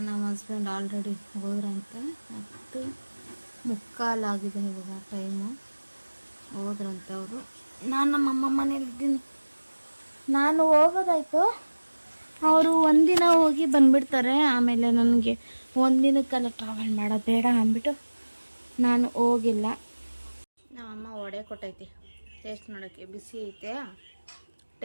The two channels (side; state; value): both; inverted; correlation -1.00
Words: ನಮ್ಮ ಹಸ್ಬೆಂಡ್ ಆಲ್ರೆಡಿ ಹೋದ್ರಂತೆ, 10:45 ಇವಾಗ ಟೈಮು. ಹೋದ್ರಂತೆ ಅವರು. ನಾನು ನಮ್ಮಮ್ಮ ಮನೇಲಿದ್ದೀನಿ. ನಾನು ಹೋಗೋದಾಯ್ತು, ಅವರು ಒಂದಿನ ಹೋಗಿ ಬಂದುಬಿಡ್ತಾರೆ. ಆಮೇಲೆ ನನಗೆ ಒಂದಿನಕ್ಕೆಲ್ಲ ಟ್ರಾವೆಲ್ ಮಾಡೋದು ಬೇಡ ಅಂದ್ಬಿಟ್ಟು ನಾನು ಹೋಗಿಲ್ಲ. ನಮ್ಮಮ್ಮ ವಡೆ ಕೊಟ್ಟೈತಿ ಟೇಸ್ಟ್ ನೋಡೋಕ್ಕೆ, ಬಿಸಿ ಐತೆ,